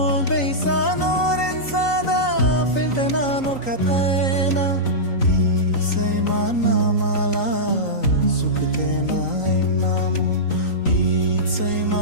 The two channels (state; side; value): late; right; 3.9 ms